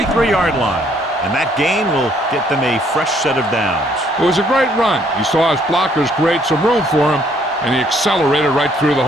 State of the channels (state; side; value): normal; both; correlation 0.65